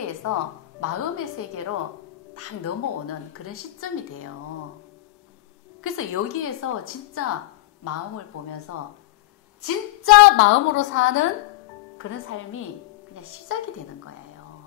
마음의 세계로 딱 넘어오는 그런 시점이 돼요. 그래서 여기에서 진짜 마음을 보면서 진짜 마음으로 사는 그런 삶이 그냥 시작이 되는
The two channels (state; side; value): quieter; right; 17.8 dB